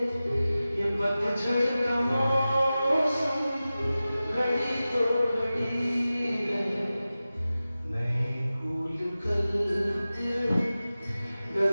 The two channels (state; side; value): inverted; both; correlation -0.95